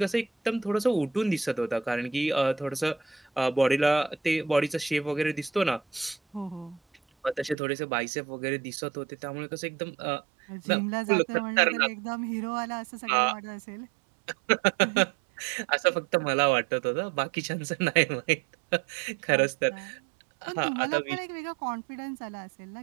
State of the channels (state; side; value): drops out; left; at 7.6 s